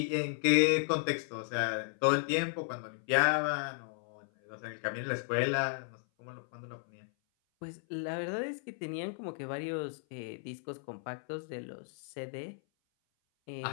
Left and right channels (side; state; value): right; silent; 55 dB below the other